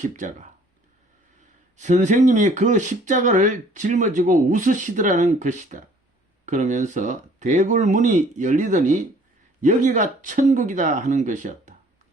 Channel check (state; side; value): normal; both; correlation 0.56